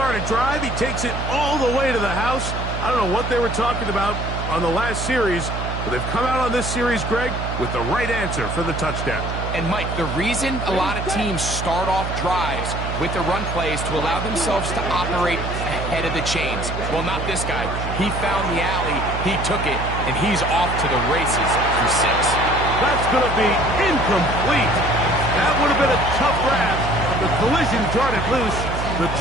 a drive. He takes it all the way to the house. I don't know what they were talking about on the last series, but they've come out on this series, Greg, with the right answer for the touchdown. And, Mike, the reason a lot of teams start off drives with the run plays to allow themselves to operate ahead of the chains. Well, not this guy. He found the alley, he took it, and he's off to the races for 6. That's going to be incomplete. That would have been a tough grab. The collision darted loose. The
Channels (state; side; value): noise; right; hum, 5 dB below the sound